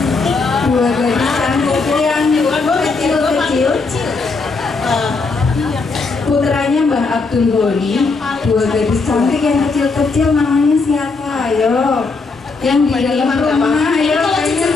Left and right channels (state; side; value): quieter; right; 4.1 dB